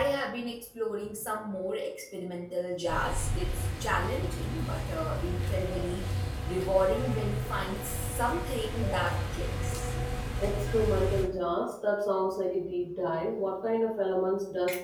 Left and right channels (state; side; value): identical; both; correlation 1.00